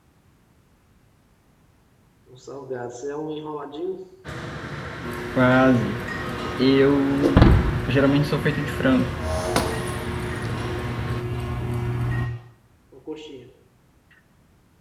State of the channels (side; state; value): both; identical; correlation 1.00